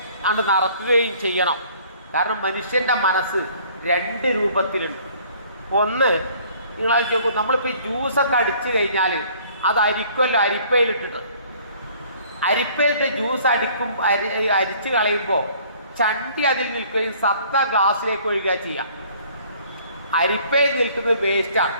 അത് നടക്കുകയും ചെയ്യണം. കാരണം മനുഷ്യൻ്റെ മനസ്സ് രണ്ട് രൂപത്തിലുണ്ട്. ഒന്ന്, നിങ്ങൾ നോക്കൂ, നമ്മളിപ്പോൾ ഈ ജ്യൂസൊക്കെ അടിച്ചു കഴിഞ്ഞാൽ അത് അരിക്കുമല്ലോ, അരിപ്പയിലിട്ടിട്ട്. അരിപ്പയിലിട്ട് ജ്യൂസ് അരിച്ച് കളയുമ്പോൾ ചണ്ടി അതിൽ നിൽക്കുകയും സത്ത ഗ്ലാസ്സിലേക്ക് ഒഴുകുക ചെയ്യാം. അരിപ്പയിൽ നിൽക്കുന്നത് വേസ്റ്റാണ്.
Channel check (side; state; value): both; inverted; correlation -0.56